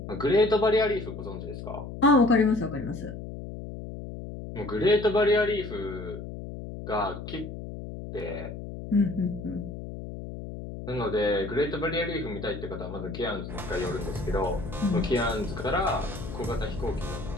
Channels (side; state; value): left; noise; hum, 9 dB below the sound